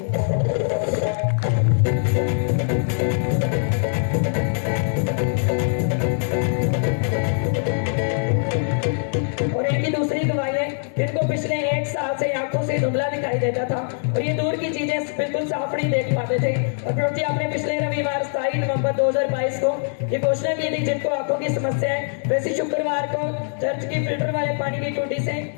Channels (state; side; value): silent; right; digital silence